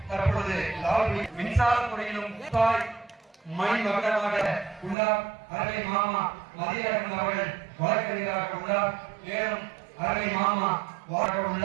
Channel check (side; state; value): left; drops out; at 5.0 s